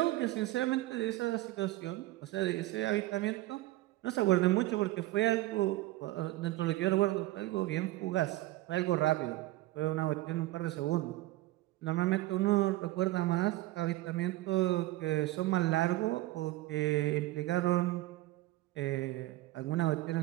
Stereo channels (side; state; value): left; quieter; 17.5 dB